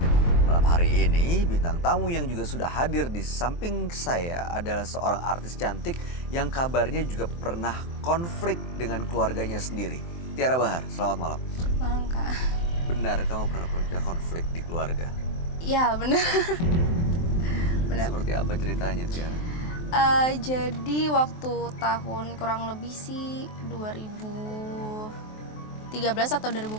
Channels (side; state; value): right; late; 23 ms